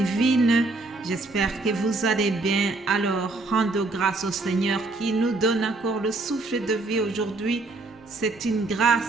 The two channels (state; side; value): quieter; left; 3.2 dB